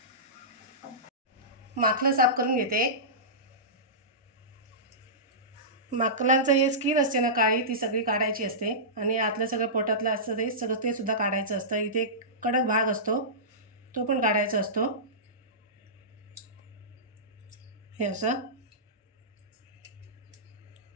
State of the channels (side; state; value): both; normal; correlation -0.19